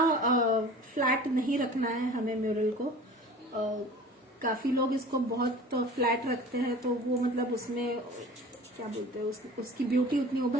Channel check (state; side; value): normal; both; correlation 0.42